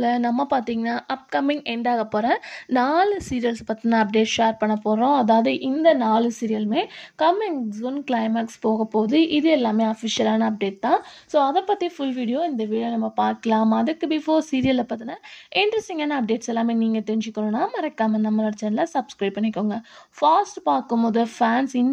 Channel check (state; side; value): identical; both; correlation 1.00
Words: நம்ம பார்த்தீங்கன்னா அப்கமிங் எண்ட் ஆக போகிற 4 சீரியல்ஸ் பற்றின அப்டேட் ஷேர் பண்ண போகிறோம். அதாவது இந்த 4 சீரியலுமே கம்மிங் ஜூன் கிளைமேக்ஸ் போக போகுது. இது எல்லாமே அஃபிஷியலான அப்டேட் தான். ஸோ அதை பற்றி ஃபுல் வீடியோ இந்த வீடியோ நம்ம பார்க்கலாம். அதுக்கு பிஃபோர் சீரியலை பற்றின இன்ட்ரெஸ்டிங்கான அப்டேட்ஸ் எல்லாமே நீங்கள் தெரிஞ்சுக்கணுன்னா மறக்காமல் நம்மளோட சேனலை சப்ஸ்கிரைப் பண்ணிக்கோங்க. ஃபாஸ்ட் பார்க்கும்போது ஃபேன்ஸ்